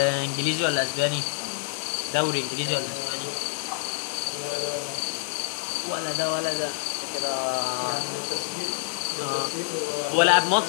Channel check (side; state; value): right; silent; digital silence